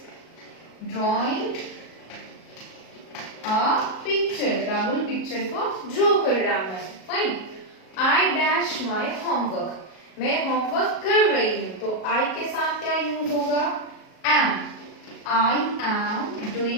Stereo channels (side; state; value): right; late; 37 ms